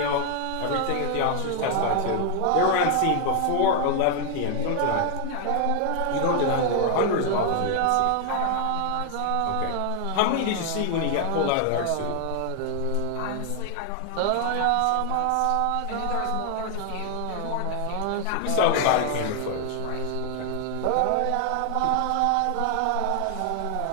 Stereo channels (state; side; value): different; both; correlation 0.01